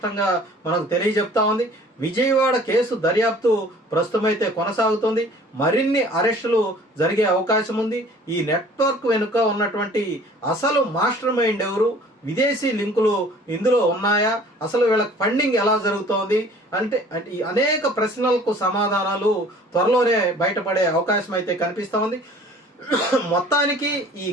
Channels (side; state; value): both; normal; correlation 0.50